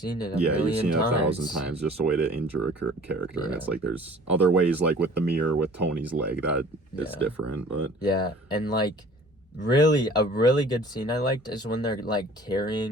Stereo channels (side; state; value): both; normal; correlation 0.49